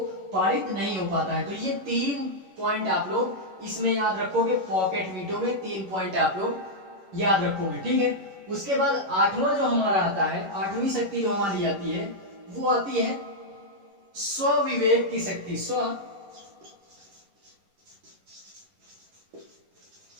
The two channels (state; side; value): late; left; 11 ms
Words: पारित नहीं हो पाता है। तो ये 3 पॉइंट आप लोग इसमें याद रखोगे, पॉकेट वीटो में 3 पॉइंट आप लोग याद रखोगे। ठीक है, उसके बाद आठवां जो हमारा आता है, आठवीं शक्ति जो हमारी आती है वो आती है स्वविवेक की शक्ति।